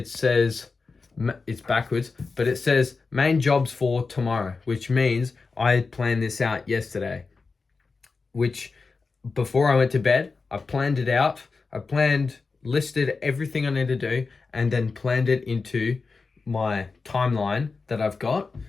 says, it's backwards, but it says main jobs for tomorrow, which means I planned this out yesterday, which before I went to bed, I planned it out. Listed everything I need to do, and then planned it into my timeline that I've got.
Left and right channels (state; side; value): quieter; right; 4.4 dB